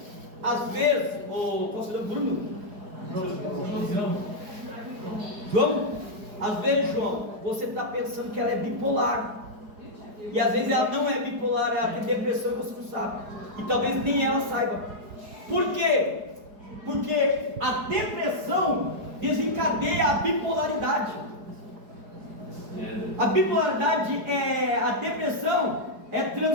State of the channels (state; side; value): late; left; 4.7 ms